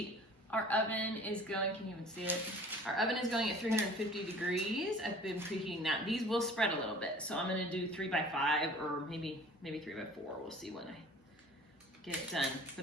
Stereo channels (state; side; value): normal; both; correlation 0.47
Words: Our oven is going, can you even see it? Our oven is going at 350 degrees. I've been preheating that. These will spread a little bit. So I'm gonna do 3 by 5 or maybe 3 by 4. We'll see when I get it done.